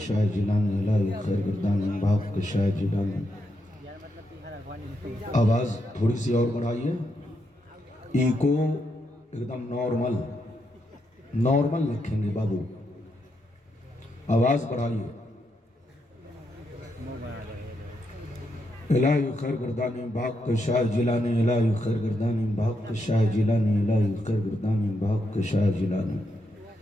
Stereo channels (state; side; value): normal; both; correlation 0.81